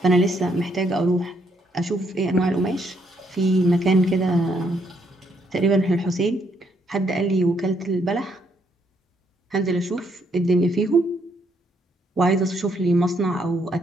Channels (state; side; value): normal; both; correlation 0.73